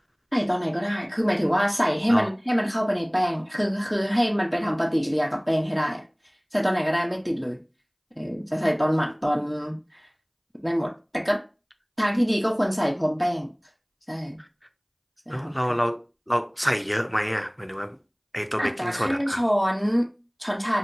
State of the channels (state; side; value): identical; both; correlation 1.00